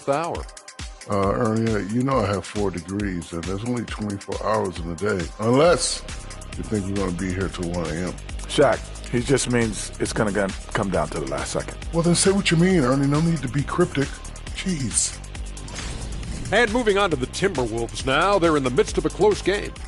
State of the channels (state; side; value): identical; both; correlation 1.00